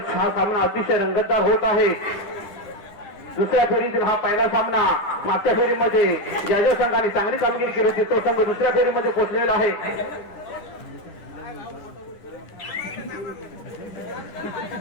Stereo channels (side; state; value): right; late; 10 ms